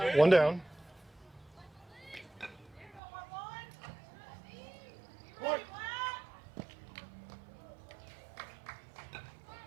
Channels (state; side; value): drops out; left; at 3.0 s